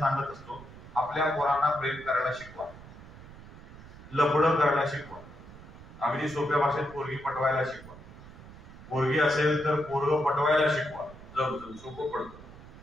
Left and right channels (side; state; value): right; noise; rumble, 17 dB below the sound